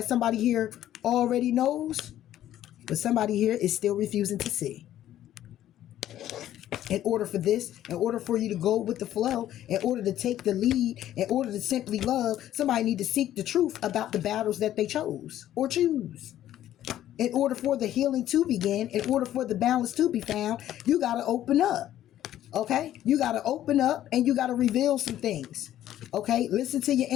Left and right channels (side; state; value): right; quieter; 12.4 dB